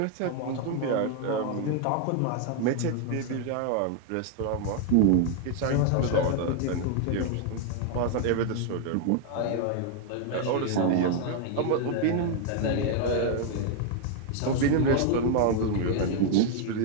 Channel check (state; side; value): different; both; correlation 0.01